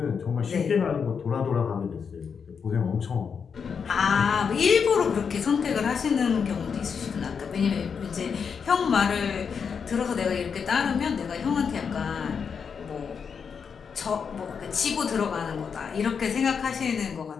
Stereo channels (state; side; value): quieter; right; 6.3 dB